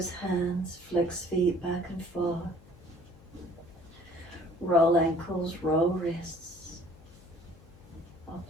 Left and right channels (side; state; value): left; noise; hum, 24 dB below the sound